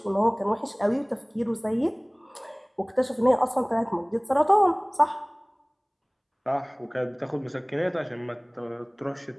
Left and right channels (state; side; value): identical; both; correlation 1.00